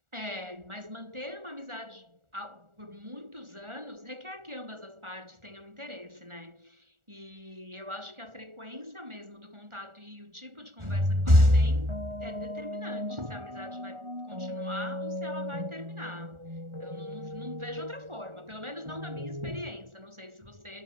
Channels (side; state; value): left; late; 1.4 ms